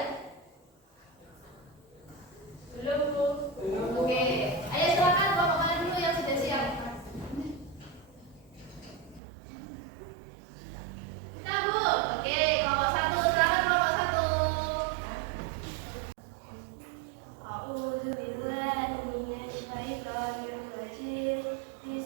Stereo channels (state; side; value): drops out; left; at 9.2 s